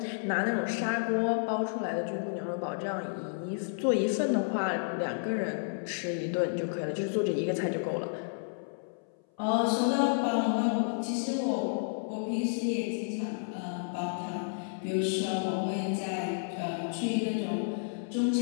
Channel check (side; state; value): right; silent; 57 dB below the other